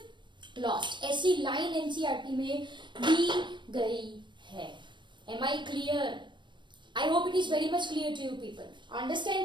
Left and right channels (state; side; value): late; left; 0.22 ms